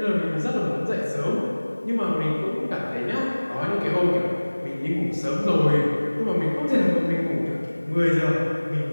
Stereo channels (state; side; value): inverted; both; correlation -1.00